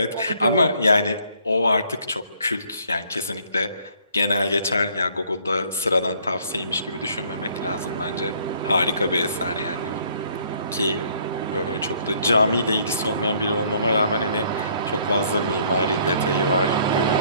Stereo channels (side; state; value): both; inverted; correlation -0.62